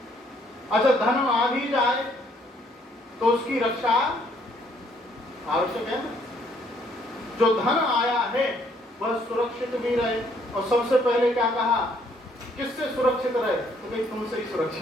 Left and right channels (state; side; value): normal; both; correlation 0.66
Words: अच्छा धन आ भी जाए तो उसकी रक्षा आवश्यक है ना। जो धन आया है वह सुरक्षित भी रहे। और सबसे पहले क्या कहा, किससे सुरक्षित रहे? तो भाई तुमसे ही